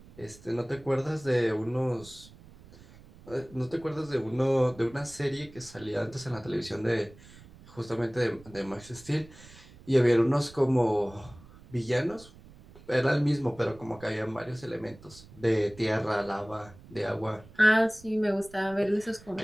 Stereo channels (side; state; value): right; noise; rumble, 21 dB below the sound